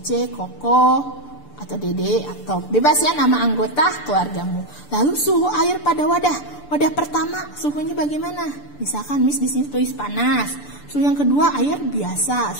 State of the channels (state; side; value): late; right; 6.8 ms